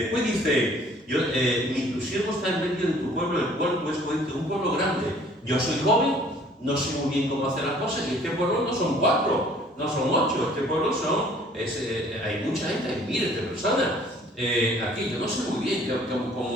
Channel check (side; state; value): both; normal; correlation 0.56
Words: dice, tu siervo está en medio de tu pueblo, el cual tú escogiste, un pueblo grande. Yo soy joven, no sé muy bien cómo hacer las cosas, y este pueblo no son 4, no son 8, este pueblo hay mucha gente, hay miles de personas. Aquí yo no sé muy bien